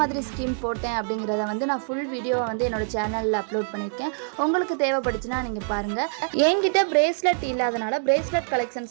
ஸ்கீம் போட்டேன் அப்படிங்கிறத வந்து நான் ஃபுல் வீடியோவை வந்து என்னோட சேனலில் அப்லோட் பண்ணியிருக்கேன். உங்களுக்கு தேவைப்படுச்சுன்னா நீங்கள் பாருங்கள். என்கிட்ட பிரேஸ்லெட் இல்லாதனால பிரேஸ்லெட்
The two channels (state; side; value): silent; left; digital silence